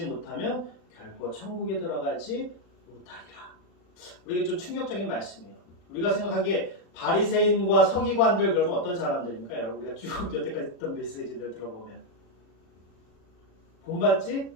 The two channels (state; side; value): late; right; 36 ms